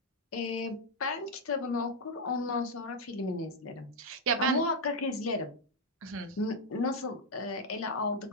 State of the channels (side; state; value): both; normal; correlation 0.00